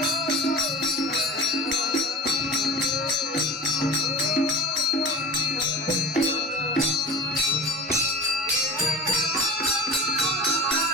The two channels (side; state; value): both; normal; correlation 0.34